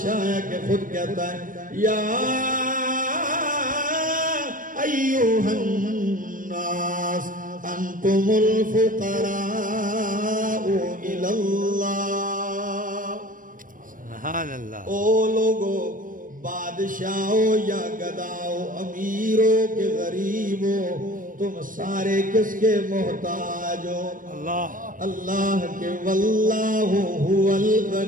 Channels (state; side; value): late; left; 0.39 ms